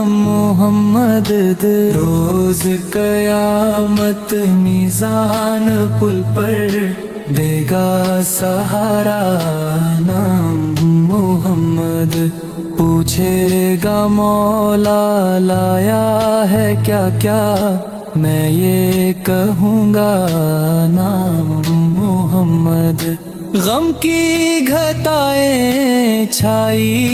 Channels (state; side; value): identical; both; correlation 1.00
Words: محمد، روز قیامت میزان پل پر دے گا سہارا نام محمد، پوچھے گا مولا لایا ہے کیا کیا میں یہ کہوں گا نام محمد، غم کی گھٹائیں